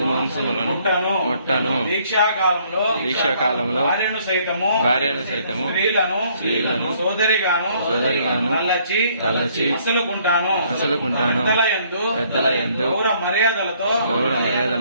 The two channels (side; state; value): both; inverted; correlation -0.64